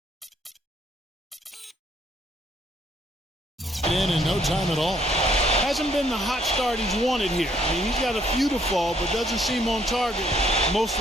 In no time at all. Hasn't been the hot start he's wanted here. I mean, he's got a few to fall, but doesn't seem on target most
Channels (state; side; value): normal; both; correlation 0.67